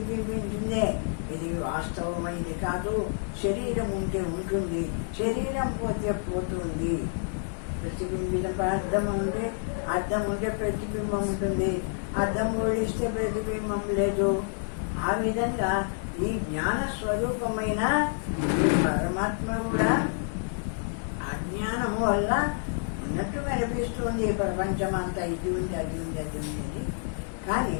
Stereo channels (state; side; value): silent; right; digital silence